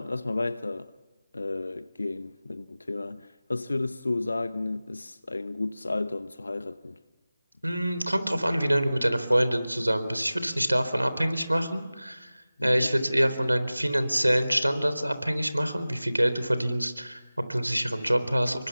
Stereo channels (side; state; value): both; inverted; correlation -0.97